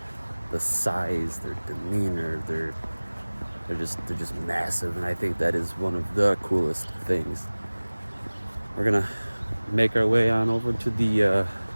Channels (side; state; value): both; inverted; correlation -1.00